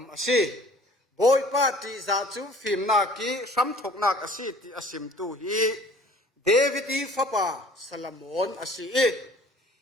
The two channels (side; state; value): both; normal; correlation 0.50